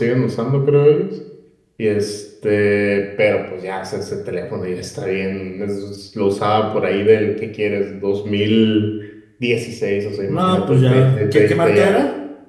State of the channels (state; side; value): identical; both; correlation 1.00